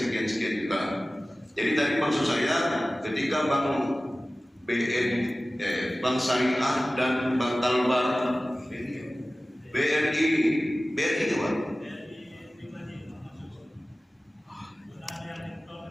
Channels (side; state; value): both; normal; correlation 0.97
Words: Jadi tadi maksud saya ketika Bank Syariah dan Bank Talbar, BRI itu Pak.